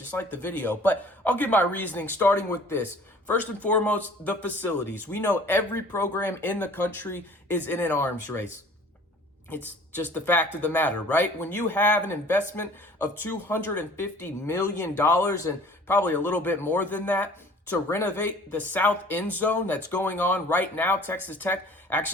like the video. But I'll give my reasoning starting with this. First and foremost, the facilities. We know every program in the country is in an arms race. It's just the fact of the matter, right? When you have an investment of $250 million and probably a little bit more than that to renovate the south end zone that's going on right now, Texas Tech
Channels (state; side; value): normal; both; correlation 0.49